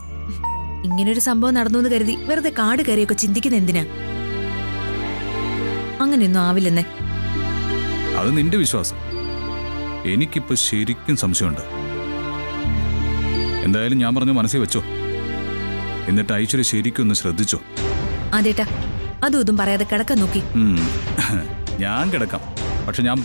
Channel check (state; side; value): inverted; both; correlation -1.00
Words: ഇങ്ങനൊരു സംഭവം നടന്നു എന്ന് കരുതി വെറുതെ കാട് കയറിയൊക്കെ ചിന്തിക്കുന്ന എന്തിനാ? അങ്ങനെയൊന്നും ആവില്ലെന്നേ. അത് നിന്റെ വിശ്വാസം. എനിക്കിപ്പോ ശരിക്കും സംശയമുണ്ട്. എന്തായാലും ഞാൻ പറഞ്ഞു മനസ്സിൽ വെച്ചോ. എന്നിട്ട് ഐശ്വര്യ ശരിക്കും ഒന്ന് ശ്രദ്ധിച്ചോ. അതേട്ടാ, അതും ഇതും പറയാതെ കിടക്കാൻ നോക്കി. ഞാൻ കിടക്കാം, പക്ഷെ ഞാൻ